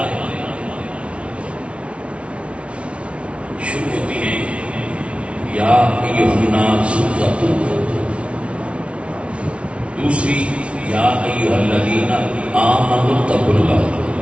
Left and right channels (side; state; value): left; late; 0.061 ms